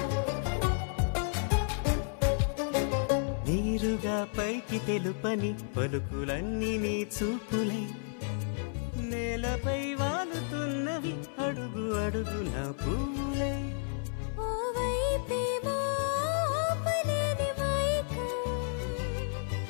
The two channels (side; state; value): right; silent; 56 dB below the other